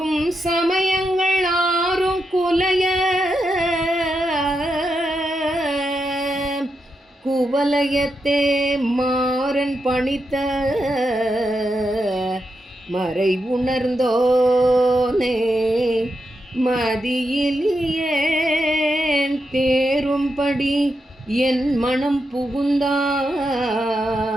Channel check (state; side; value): normal; both; correlation 0.85